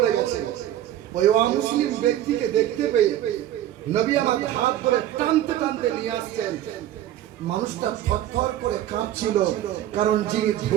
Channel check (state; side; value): quieter; left; 12.5 dB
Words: গেছে, ওই অমুসলিম ব্যক্তিকে দেখতে পেয়ে নবী আমার হাত ধরে টানতে টানতে নিয়ে আসছেন। মানুষটা থরথর করে কাঁপছিল, কারণ যিনি